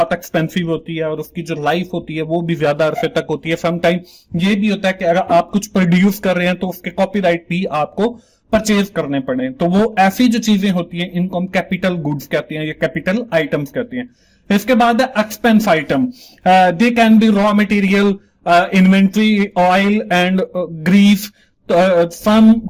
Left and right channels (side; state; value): both; identical; correlation 1.00